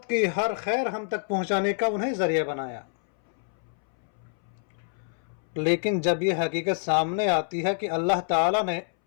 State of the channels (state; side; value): silent; right; 60 dB below the other